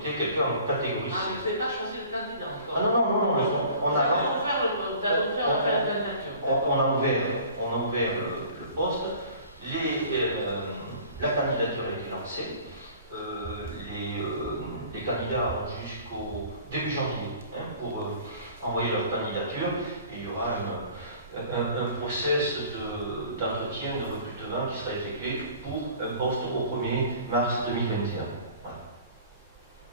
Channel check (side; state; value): both; inverted; correlation -0.47